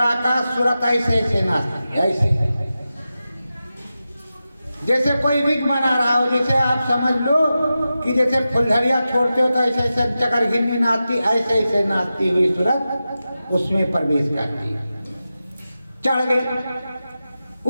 सूरत ऐसे ऐसे नाचती, ऐसे जैसे कोई विग बना रहा हो। जैसे आप समझ लो कि जैसे फुलझड़िया छोड़ते हो तो ऐसे ऐसे चकर घिन्नी नाचती, ऐसे ऐसे नाचती हुई सूरत उसमें प्रवेश करती। चढ़ गए।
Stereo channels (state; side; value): inverted; both; correlation -0.92